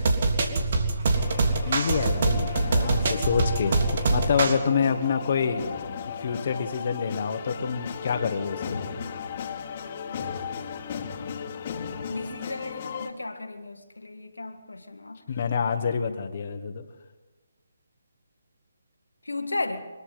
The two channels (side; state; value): both; inverted; correlation -0.75